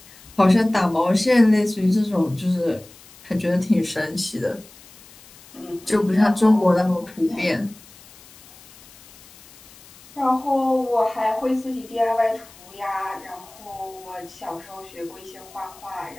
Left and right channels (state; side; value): noise; left; hiss, 23 dB below the sound